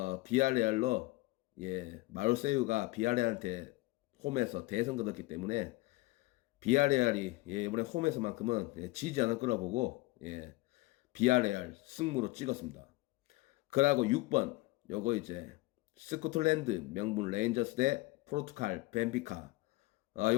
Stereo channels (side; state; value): right; quieter; 21.1 dB